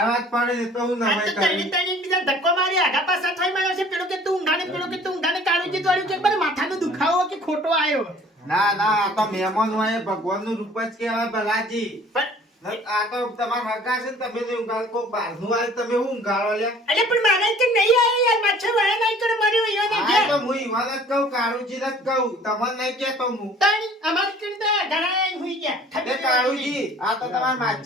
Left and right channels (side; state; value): both; normal; correlation 0.51